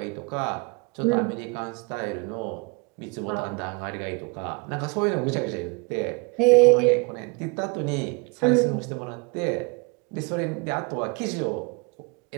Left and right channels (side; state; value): left; quieter; 29.9 dB